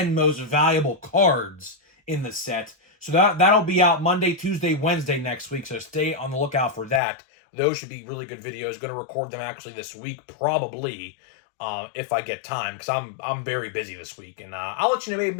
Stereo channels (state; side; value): drops out; right; at 7.0 s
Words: most valuable cards in the set. So that'll be out Monday, Tuesday, Wednesday next week. So stay on the lookout for that. Those should be really good videos. Going to record them actually this week, probably, if I get time, because I'm very busy this week. And I'll let you know,